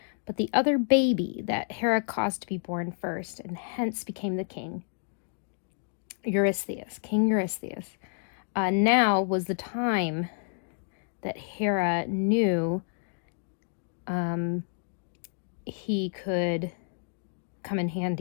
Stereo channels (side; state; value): right; silent; digital silence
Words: but the other baby that Hera caused to be born first, and hence became the king. Eurystheus, King Eurystheus. Now was the time that Hera knew he could come in